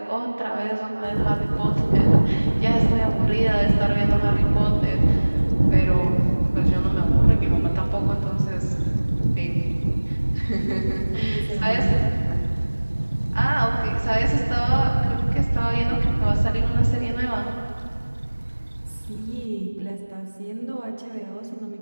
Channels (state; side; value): inverted; both; correlation -1.00